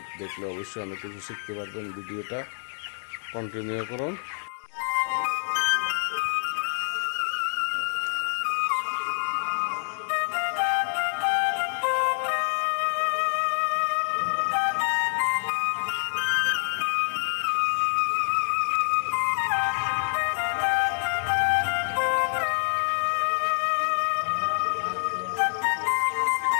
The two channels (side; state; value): right; silent; 60 dB below the other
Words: দেখলে অবশ্যই অনেক কিছু শিখতে পারবেন। ভিডিওটা কন্টিনিউ করুন।